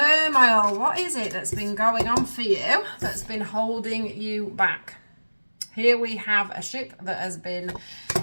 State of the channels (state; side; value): inverted; both; correlation -1.00